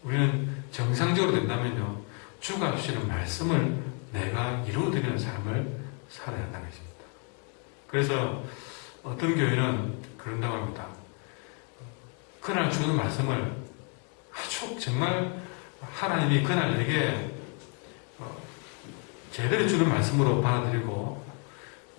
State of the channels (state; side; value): quieter; right; 37.7 dB